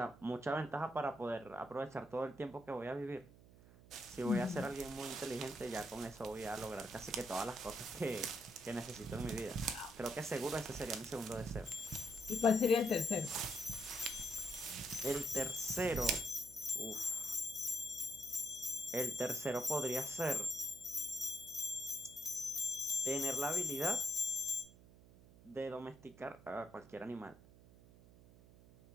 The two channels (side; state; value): right; noise; hum, 22 dB below the sound